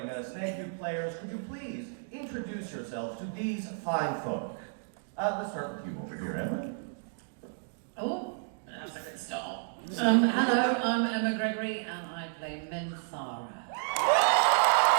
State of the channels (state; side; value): silent; left; digital silence